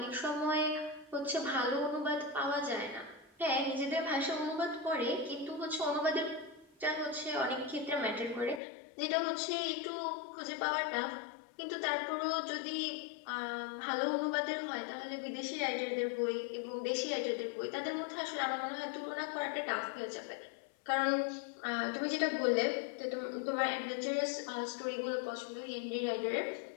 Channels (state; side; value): drops out; right; at 8.6 s